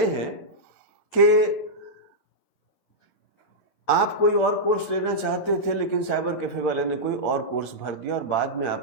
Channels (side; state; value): right; late; 11 ms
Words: हैं कि आप कोई और कोर्स लेना चाहते थे लेकिन साइबर कैफे वाले ने कोई और कोर्स भर दिया और बाद में